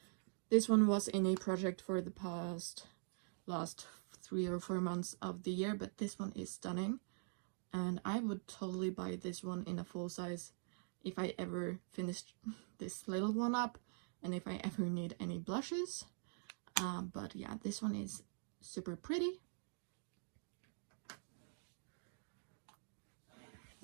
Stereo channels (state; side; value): silent; left; digital silence